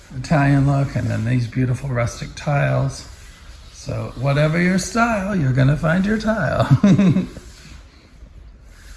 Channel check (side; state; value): both; identical; correlation 1.00